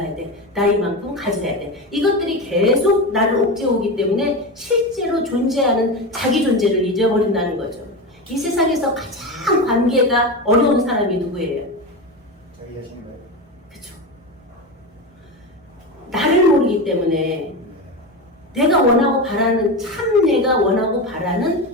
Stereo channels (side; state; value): both; normal; correlation 0.20